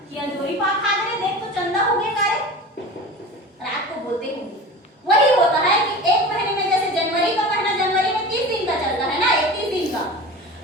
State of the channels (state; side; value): normal; both; correlation 0.34